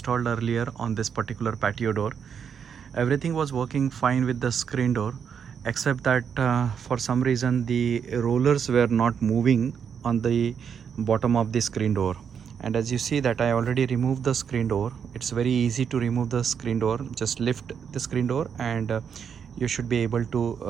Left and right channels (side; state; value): left; quieter; 7.3 dB